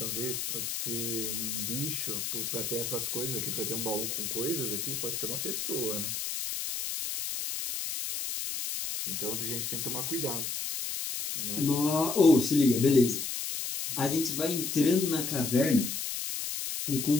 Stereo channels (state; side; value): noise; left; hiss, 3 dB below the sound